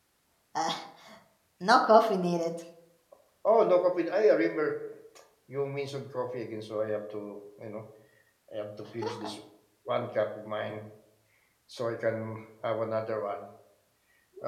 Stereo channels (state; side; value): identical; both; correlation 1.00